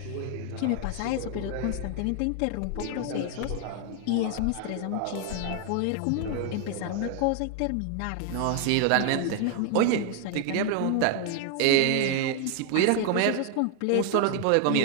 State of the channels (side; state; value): both; different; correlation 0.00